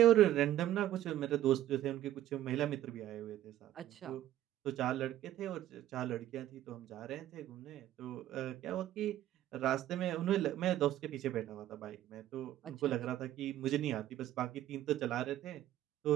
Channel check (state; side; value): quieter; left; 13.1 dB